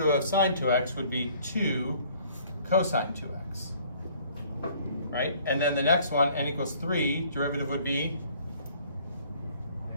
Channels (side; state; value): both; inverted; correlation -0.57